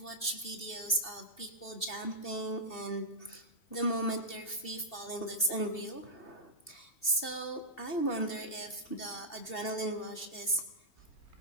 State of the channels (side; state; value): right; late; 2.7 ms